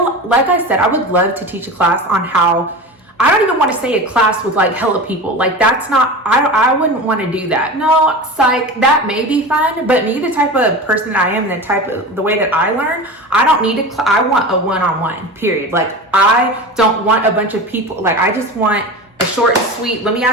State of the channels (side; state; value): both; normal; correlation 0.30